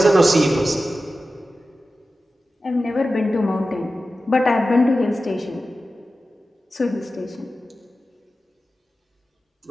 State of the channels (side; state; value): both; normal; correlation 0.94